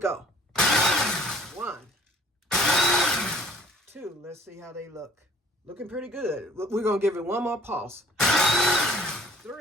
1, 2. Let's see how they look. Looking pretty good. We're going to give it one more pulse.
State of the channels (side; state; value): both; normal; correlation 0.55